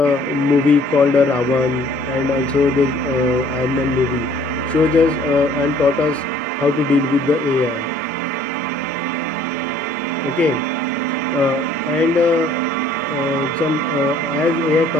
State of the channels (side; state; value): both; normal; correlation 0.57